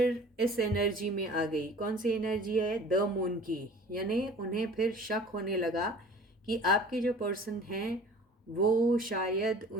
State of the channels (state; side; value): normal; both; correlation 0.46